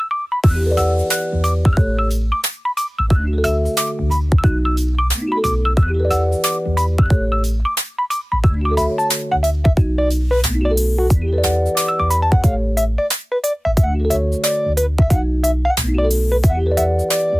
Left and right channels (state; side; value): normal; both; correlation 0.97